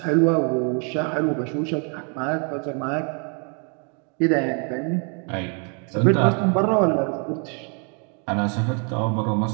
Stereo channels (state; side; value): quieter; left; 37.9 dB